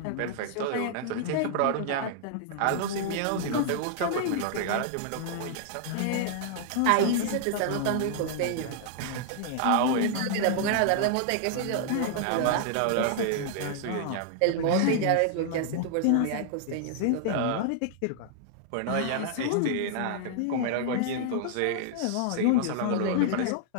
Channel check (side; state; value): both; different; correlation -0.01